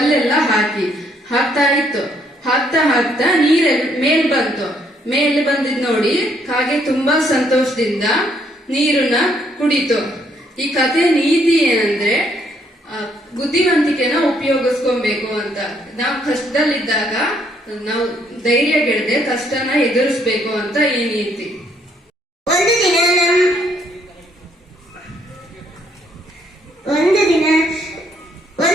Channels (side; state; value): both; normal; correlation 0.69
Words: ಹಾಕ್ತಾ ಇತ್ತು. ಹಾಕ್ತಾ ಮೇಲ್ ಬಂತು. ಮೇಲೆ ಬಂದಿದ್ ನೋಡಿ ಕಾಗೆ ತುಂಬಾ ಸಂತೋಷದಿಂದ ನೀರನ್ನ ಕುಡಿತು. ಈ ಕಥೆ ನೀತಿ ಏನಂದ್ರೆ ಬುದ್ಧಿವಂತಿಕೆನ ಉಪಯೋಗಿಸ್ಕೊಬೇಕು ಅಂತ. ನಾವು ಕಷ್ಟದಲ್ಲಿದ್ದಾಗ ನಾವು ಧೈರ್ಯ ಗೆಡದೆ ಕಷ್ಟನ ಎದುರಿಸ್ಬೇಕು ಅಂತ ಈ ನೀತಿ. ಒಂದು ದಿನ